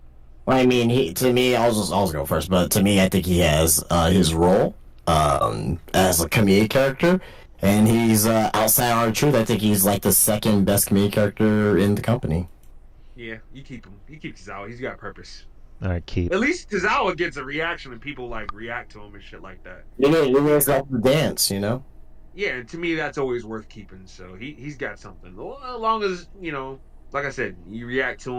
Well, I mean, to me, I'll go first, but to me, I think he has his role as a comedic character, and he's outside R-Truth. I think he's like the second best comedic character in the company. Yeah, you keep him. You keep Tozawa. He's got purpose. All right, keep. At least Tozawa gets a reaction and people like react to him and shit like that. You guys like the dance, Yeah, and to me that's always worth keeping. So he's got something. As long as like I said, you react to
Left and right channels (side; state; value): both; identical; correlation 1.00